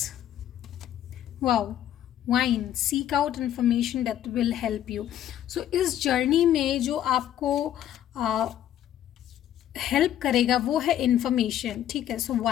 Wow. Wine, seek out information that will help you. So इस जर्नी में जो आपको हेल्प करेगा वो है इन्फॉर्मेशन। ठीक है, सो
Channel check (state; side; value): quieter; right; 11.4 dB